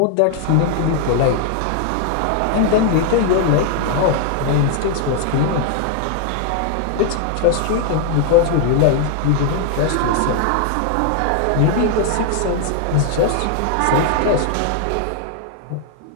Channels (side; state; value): both; different; correlation 0.00